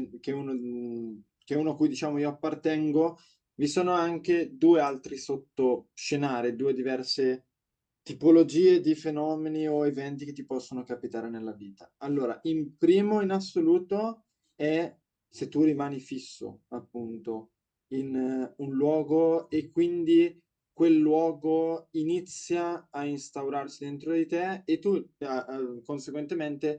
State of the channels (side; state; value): both; identical; correlation 1.00